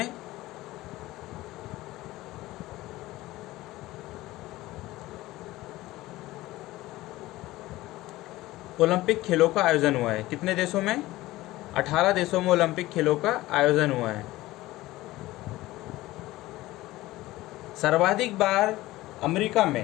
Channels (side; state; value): right; quieter; 17.7 dB